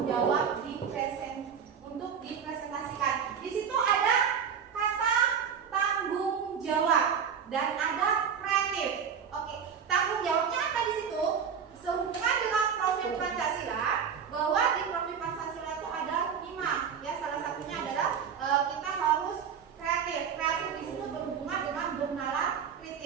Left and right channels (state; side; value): quieter; left; 7.2 dB